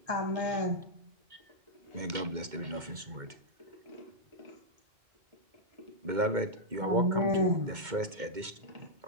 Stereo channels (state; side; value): late; left; 2.1 ms